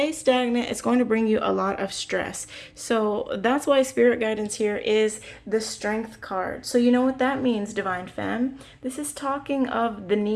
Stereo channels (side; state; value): both; identical; correlation 1.00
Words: stagnant, it's going to bring you a lot of stress. So that's why Spirit Guidance here is the Strength card. So you know what that means, Divine Femme? This is talking of the